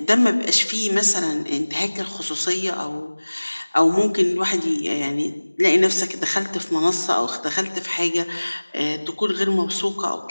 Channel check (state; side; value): inverted; both; correlation -1.00